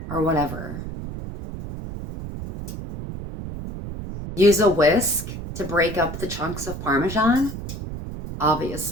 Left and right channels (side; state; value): right; noise; rumble, 8 dB below the sound